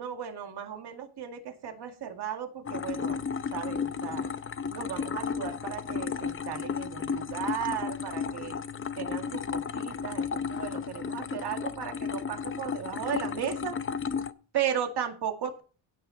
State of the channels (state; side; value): normal; both; correlation 0.10